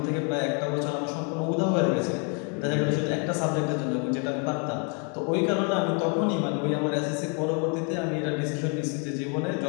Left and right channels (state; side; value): quieter; right; 35.7 dB